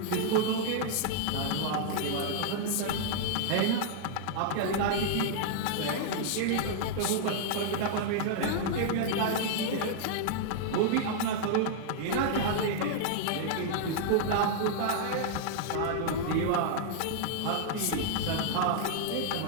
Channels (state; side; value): different; both; correlation -0.01